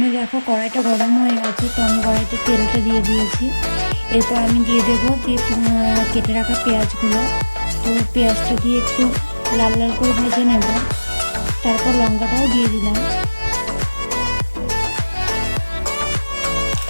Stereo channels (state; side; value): inverted; both; correlation -1.00